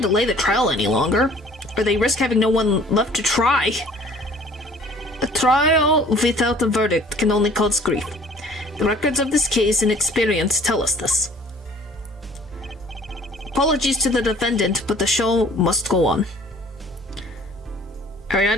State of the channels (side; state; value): both; normal; correlation 0.52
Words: delay the trial any longer, or they risk having no one left to try. A trial without a verdict can only cause grief. The records of this case and experience tell us this. Apologies to the defendant, but the show must go on. Are you